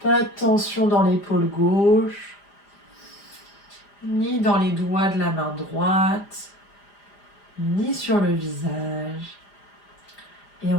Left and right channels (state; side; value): late; right; 4.9 ms